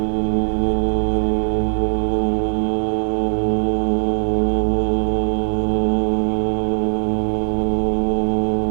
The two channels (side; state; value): left; silent; digital silence